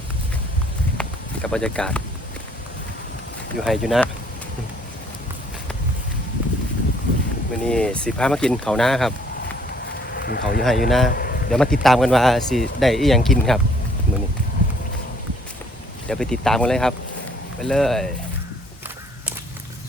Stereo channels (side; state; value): both; normal; correlation 0.62